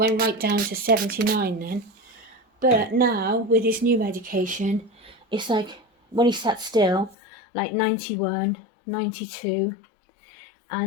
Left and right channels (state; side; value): drops out; right; at 7.2 s